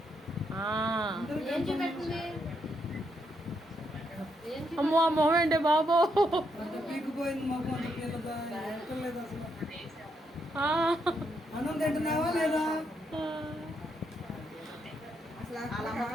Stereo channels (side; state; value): both; normal; correlation 0.78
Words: అమ్మో ఆ మొహం ఏంటి బాబో. అన్నం తింటున్నావా లేదా?